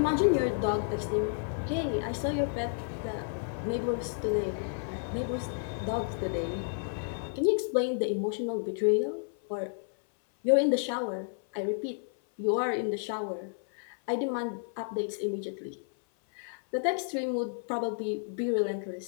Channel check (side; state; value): right; silent; 57 dB below the other